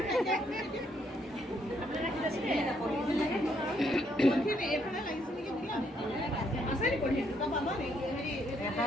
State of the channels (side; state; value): both; normal; correlation 0.72